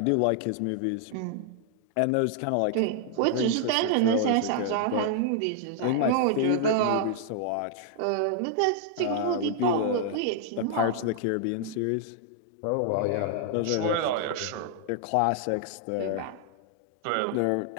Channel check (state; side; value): different; both; correlation 0.00